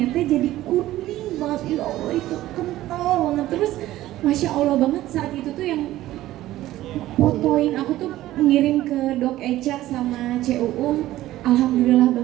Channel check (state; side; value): quieter; left; 15.1 dB